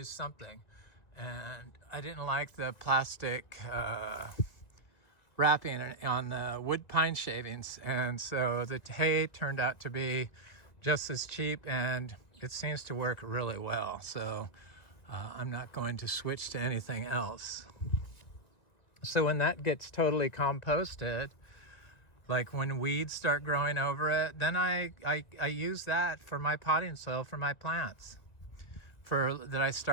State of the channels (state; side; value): late; right; 1.9 ms